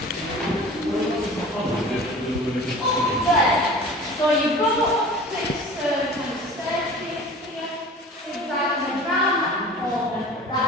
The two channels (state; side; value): normal; both; correlation 0.41